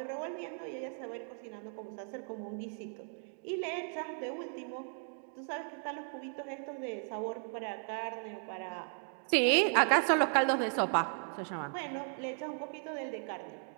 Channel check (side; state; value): left; silent; 54 dB below the other